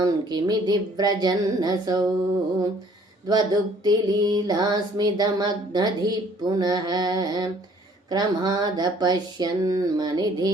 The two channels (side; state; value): both; normal; correlation 0.58